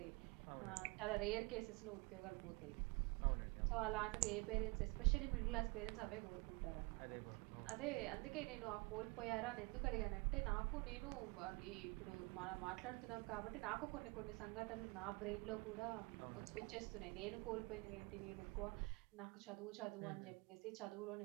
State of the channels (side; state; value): left; quieter; 27.1 dB